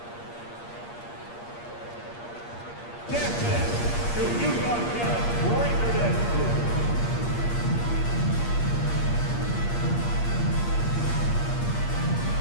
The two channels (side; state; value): right; late; 8.5 ms